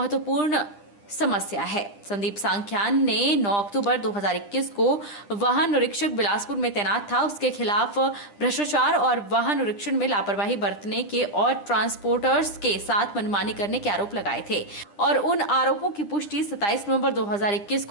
समस्या है। संदीप सांख्यान ने 9 अक्टूबर 2021 को वाहन निरीक्षक बिलासपुर में तैनात था। उसके खिलाफ भ्रष्टाचार और वाहन निरीक्षण में लापरवाही बरतने के और ट्रांसपोर्टर्स के साथ मनमानी करने के आरोप लगाए थे और उन आरोपों की पुष्टि 27 नवंबर 2021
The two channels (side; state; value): right; late; 9.9 ms